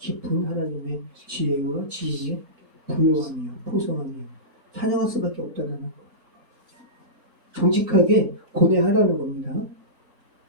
하나님의 지혜와 지혜의 부요하며 풍성하며 찬양할 수밖에 없다는 거. 정직하게 고뇌하라는 겁니다.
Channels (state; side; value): normal; both; correlation -0.20